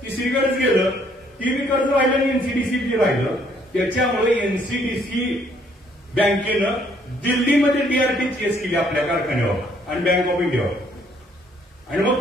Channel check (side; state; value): both; normal; correlation 0.65